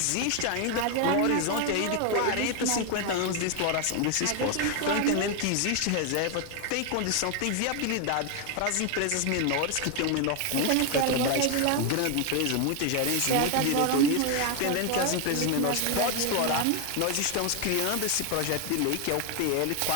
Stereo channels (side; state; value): both; different; correlation 0.01